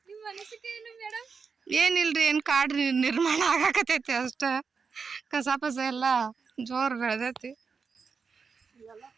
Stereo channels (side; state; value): left; quieter; 5.4 dB